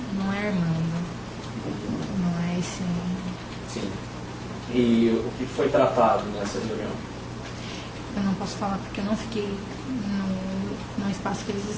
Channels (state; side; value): identical; both; correlation 1.00